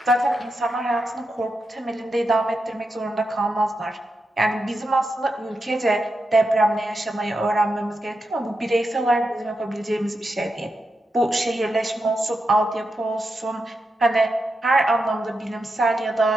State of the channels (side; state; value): both; normal; correlation 0.87